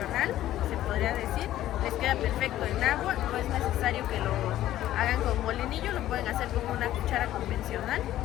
se podría decir. Les queda perfecto en agua, no es necesario que lo hagan con molinillo, lo pueden hacer con una cuchara convencional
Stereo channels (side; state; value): right; quieter; 13.5 dB